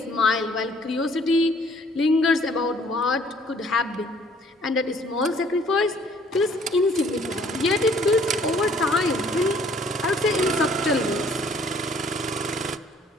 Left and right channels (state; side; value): normal; both; correlation 0.59